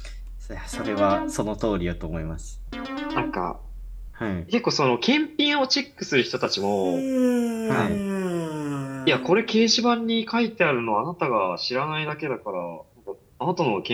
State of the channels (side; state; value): both; identical; correlation 1.00